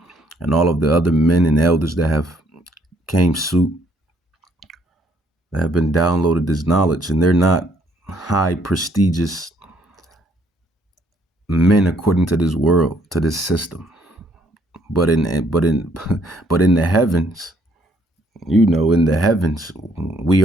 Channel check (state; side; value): normal; both; correlation 0.68